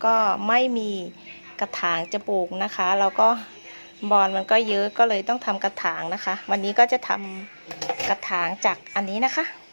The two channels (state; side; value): inverted; both; correlation -1.00